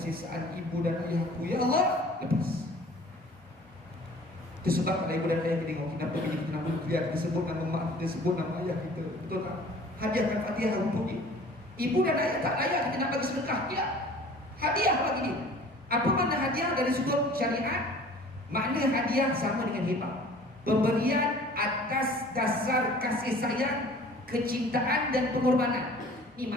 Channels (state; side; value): normal; both; correlation 0.48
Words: ibu dan ayahku, ya Allah, lepas. Itu sebab kalau ibu dan ayah kita tengok, kenapa kita nama dia, kita sebut nama mak, kita sebut nama ayah kita, betul tak? Hadiahkan Fatihah untuk dia. Ibu dan ayah tak layak kita nak bagi sedekah, tidak. Hadiah bagi dia. Apa makna hadiah dari sudut syariat? Makna hadiah sama dengan hibah, pemberian atas dasar kasih sayang, kecintaan dan pengorbanan. Ini